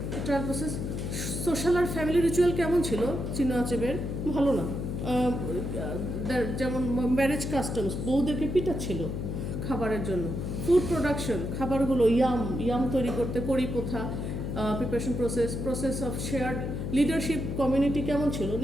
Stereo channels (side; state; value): left; noise; hum, 3 dB below the sound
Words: ট্রায়াল প্রসেস, সোশ্যাল আর ফ্যামিলি রিচুয়াল কেমন ছিল চিনোয়া আচেবের, ভালো না। যেমন ম্যারেজ কাস্টমস, বউদেরকে পিটাচ্ছিল খাবারের জন্য। ফুড প্রোডাকশন, খাবারগুলো ইয়াম তৈরি করতে, কড়ি প্রথা, preparation process of shared leadership, community কেমন ছিল,